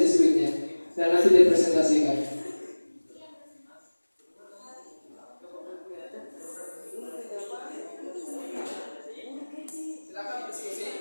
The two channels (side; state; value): both; inverted; correlation -1.00